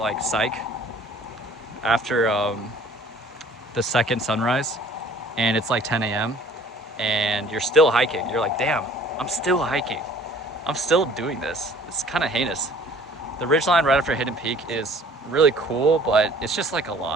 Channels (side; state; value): both; normal; correlation 0.53